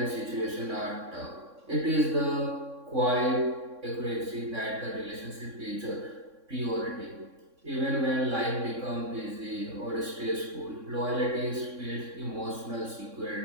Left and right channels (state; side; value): late; left; 3.6 ms